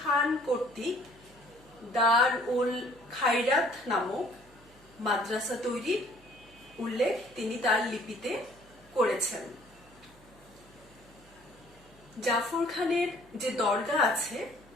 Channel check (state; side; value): noise; right; hum, 26 dB below the sound